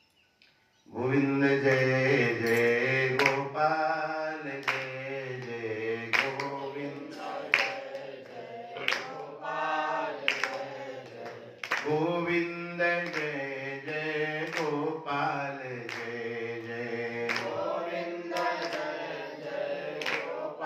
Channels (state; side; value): identical; both; correlation 1.00